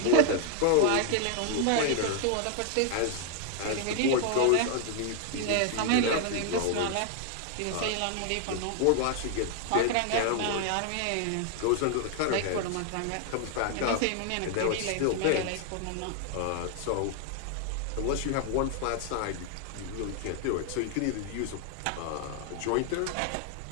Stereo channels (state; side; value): different; both; correlation 0.00